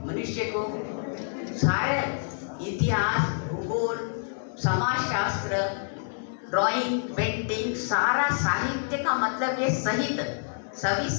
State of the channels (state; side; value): silent; right; 60 dB below the other